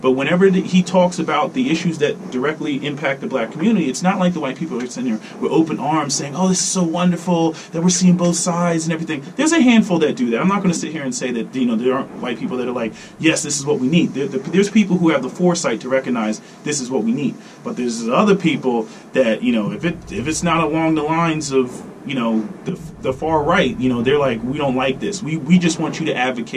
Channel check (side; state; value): both; identical; correlation 1.00